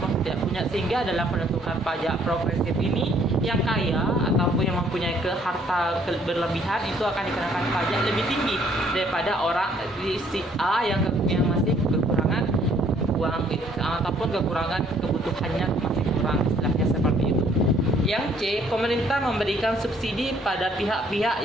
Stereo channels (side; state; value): both; normal; correlation 0.63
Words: tidak punya, sehingga dalam penentukan pajak progresif ini yang kaya ataupun yang mempunyai harta berlebihan itu akan dikenakan pajak lebih tinggi daripada orang di si A yang masih kekurangan uang ataupun kekurangan kebutuhannya masih kurang, istilahnya seperti itu. Yang C, pemerintah memberikan subsidi pada pihak-pihak